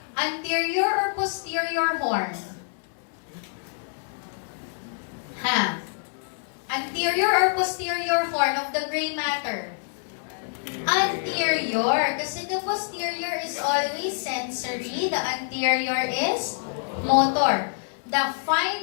anterior or posterior horn. Anterior or posterior horn of the gray matter? Anterior. Kasi the posterior is always sensory. The anterior is motor. The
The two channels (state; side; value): silent; right; 58 dB below the other